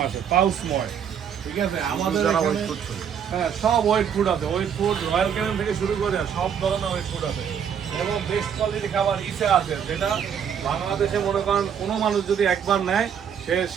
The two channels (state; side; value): quieter; left; 8.0 dB